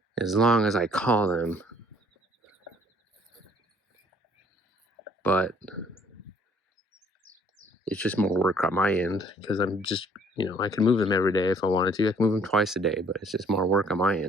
As long as I call them. But it's just more work on my end because I'm just, I can move them every day if I wanted to. I can move them twice a day, but it's just more work on my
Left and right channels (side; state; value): both; normal; correlation 0.60